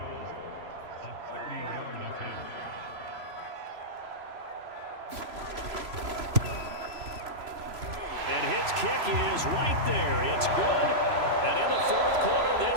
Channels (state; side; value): late; left; 3.0 ms